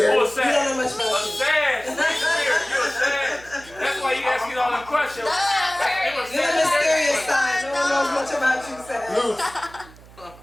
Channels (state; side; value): noise; right; hum, 22 dB below the sound